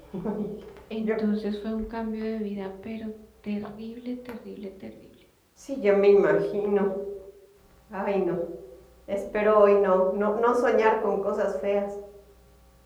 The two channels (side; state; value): both; identical; correlation 1.00